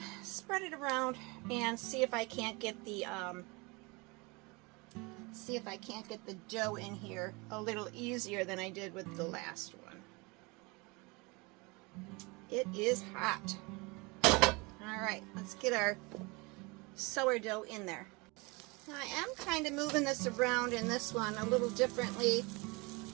spread it around, and see if I can't get the dough in here a little easier than I did with the last one. It is hot. Alright, let's get our sourdough in there. Now, I am kind of moving this around in this one a little differently,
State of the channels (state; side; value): quieter; left; 26.9 dB